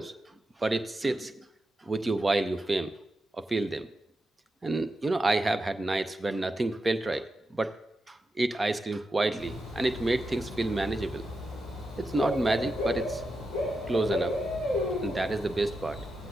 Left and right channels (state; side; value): normal; both; correlation 0.88